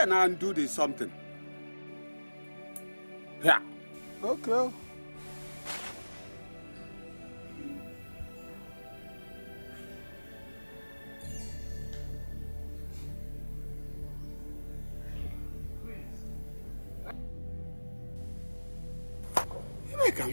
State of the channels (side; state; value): both; inverted; correlation -1.00